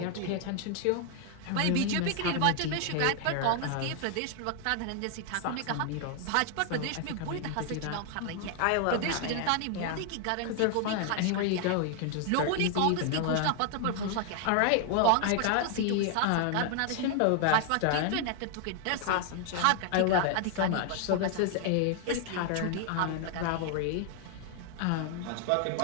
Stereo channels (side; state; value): both; different; correlation 0.00